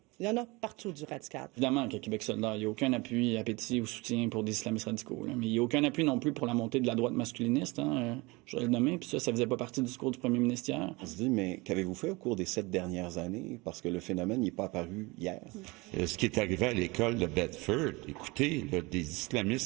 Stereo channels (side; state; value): left; quieter; 24.5 dB